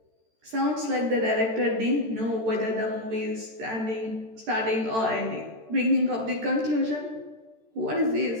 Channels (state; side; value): late; left; 13 ms